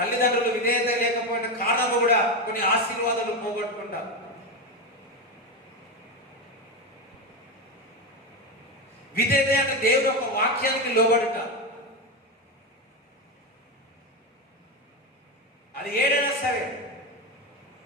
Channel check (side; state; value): both; normal; correlation 0.14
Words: విధేయత లేకపోయిన కారణము కూడా కొన్ని ఆశీర్వాదాలు పోగొట్టుకుంటారు. విధేయత అంటే దేవుడు యొక్క వాక్యానికి లోబడుట. అది ఏదైనా సరే,